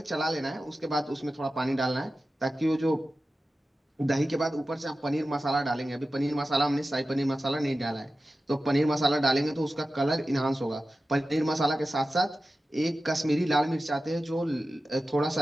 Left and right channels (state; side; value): normal; both; correlation 0.94